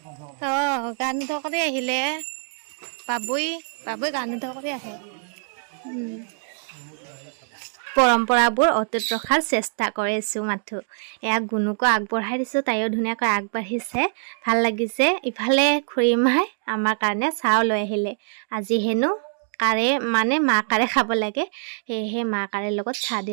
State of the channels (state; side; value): silent; left; digital silence